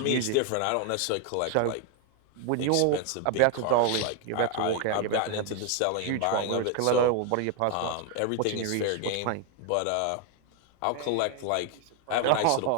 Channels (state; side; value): different; both; correlation 0.01